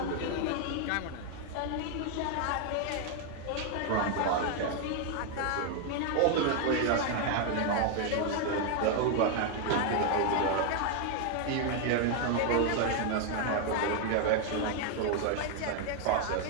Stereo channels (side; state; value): both; different; correlation 0.01